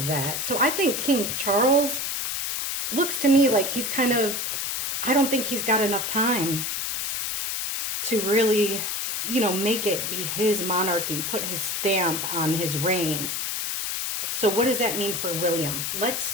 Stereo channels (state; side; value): noise; left; hiss, 2 dB below the sound